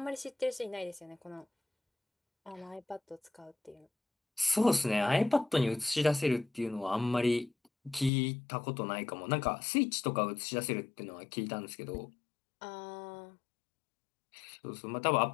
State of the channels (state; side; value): drops out; right; at 8.1 s